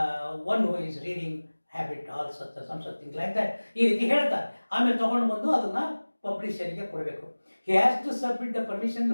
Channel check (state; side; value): inverted; both; correlation -1.00